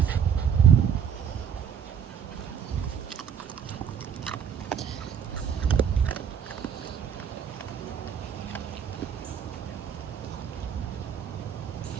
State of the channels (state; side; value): quieter; left; 8.0 dB